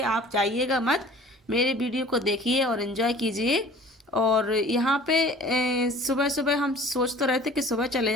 आप जाइएगा मत, मेरे वीडियो को देखिए और एंजॉय कीजिए। और यहाँ पे सुबह सुबह हम सोच तो रहे थे कि सुबह चले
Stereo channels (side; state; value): both; normal; correlation 0.48